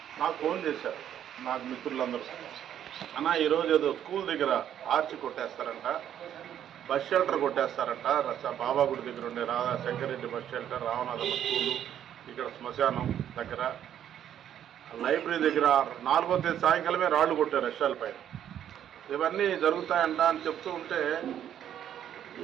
నాకు ఫోన్ చేశారు నాకు మిత్రులందరూ, అన్న ఈరోజు ఏదో స్కూల్ దగ్గర ఆర్చి కొట్టేస్తారంట, బస్ షెల్టర్ కొట్టేస్తారంట, బాబాగుడి దగ్గర ఉండే శంకరెడ్డి బస్ షెల్టర్, రామనాథమ్మ స్కూలు, ఇక్కడ శ్మశానం దగ్గర, లైబ్రరీ దగ్గర 4వ తేదీ సాయంకాలమే రాళ్లు కొట్టారు రష్యాల పైన. ఇవన్నీ జరుగుతాయంట అని చెప్తూ ఉంటే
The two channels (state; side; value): quieter; left; 10.2 dB